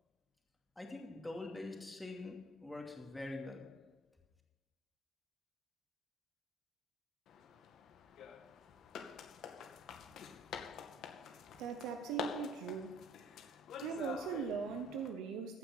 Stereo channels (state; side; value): normal; both; correlation 0.54